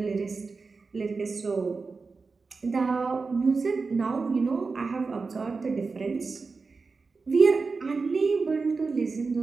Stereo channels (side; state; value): left; quieter; 4.4 dB